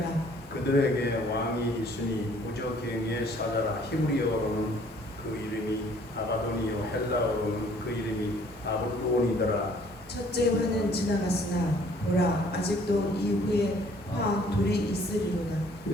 그들에게 왕이 있으니 무저갱의 사자라. 히브리어로는 그 이름이 아바돈이요 헬라어로는 그 이름이 아볼론이더라. 첫째 화는 지나갔으나 보라 아직도 이후에 화 둘이 있으리로다.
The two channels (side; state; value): both; normal; correlation 0.58